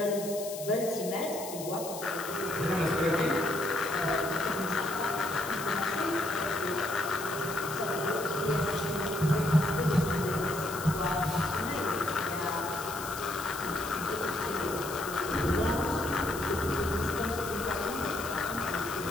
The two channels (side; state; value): left; noise; hiss, 10 dB below the sound